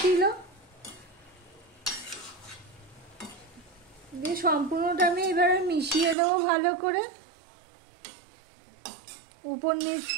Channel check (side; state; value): left; drops out; at 6.2 s